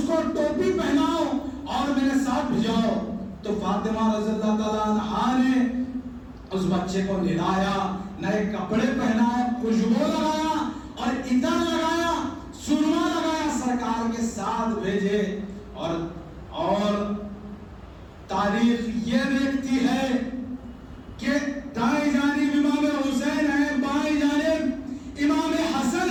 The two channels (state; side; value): identical; both; correlation 1.00